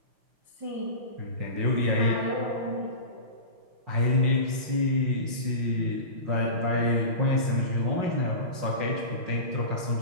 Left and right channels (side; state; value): left; late; 5.6 ms